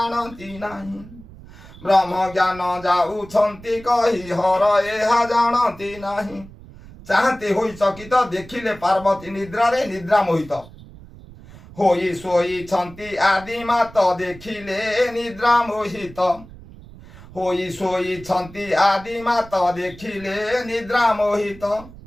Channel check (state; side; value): noise; right; rumble, 19 dB below the sound